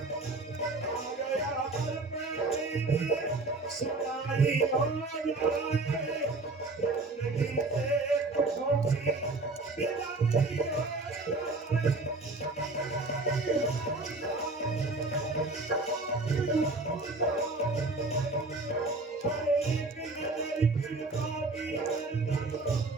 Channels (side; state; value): left; quieter; 3.2 dB